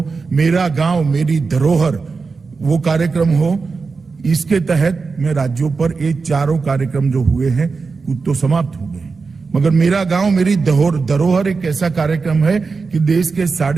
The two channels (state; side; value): quieter; left; 4.6 dB